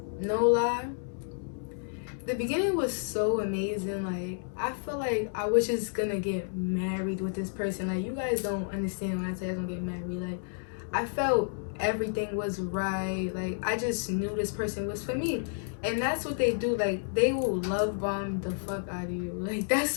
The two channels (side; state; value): right; silent; digital silence